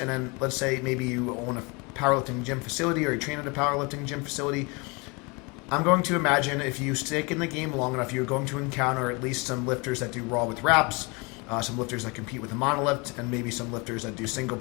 then let's say maybe you own a powerlifting gym facility or you train at a powerlifting gym facility. I'm going to imagine if you stick in the game long enough, you're going to encounter at least some lifters that do raw with wraps, some lifters that compete with a monolift, and maybe some lifters that do single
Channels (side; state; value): right; quieter; 28.8 dB